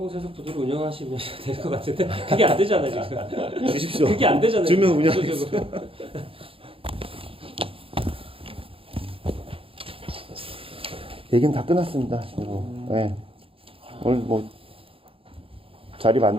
부두를 운영하시면 될 것 같은데 그게 안 되잖아요 지금. 주십시오. 그게 안 되잖아요. 주면 지금 운영하겠습니다. 구조적으로. 얘기는 다 끝났습니다. 네. 오늘 뭐 자리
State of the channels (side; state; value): left; late; 0.27 ms